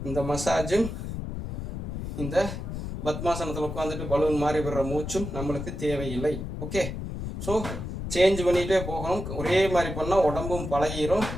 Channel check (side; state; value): left; noise; rumble, 6 dB below the sound